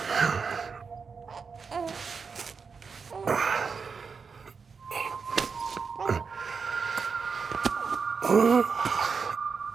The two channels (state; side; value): quieter; left; 5.4 dB